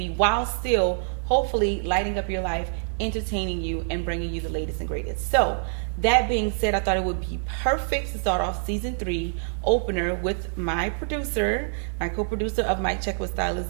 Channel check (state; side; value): silent; left; 61 dB below the other